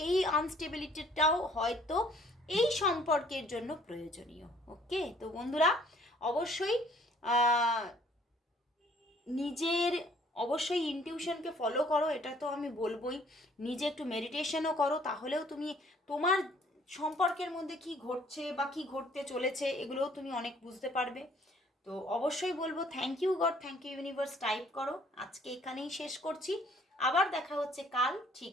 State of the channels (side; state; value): both; normal; correlation 0.59